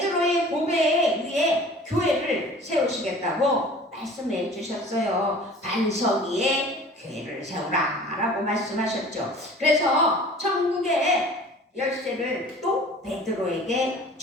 고백에 의해 교회를 세우시겠다고 말씀해 주셨어요. 반석 위에 교회를 세우라 라고 말씀하셨죠. 그래서 천국의 열쇠를 또 베드로에게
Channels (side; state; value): both; normal; correlation 0.45